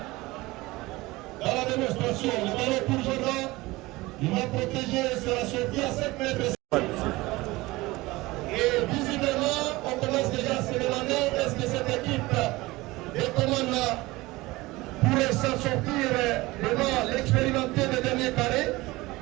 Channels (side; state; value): left; quieter; 20.5 dB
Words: dans la démonstration. Le ballon pour Jordan. Il va protéger, sera sorti à 7 mètres. Et visiblement, on commence déjà à se demander est-ce que cette équipe de commande pourrait s'en sortir devant l'expérimenté des derniers carrés.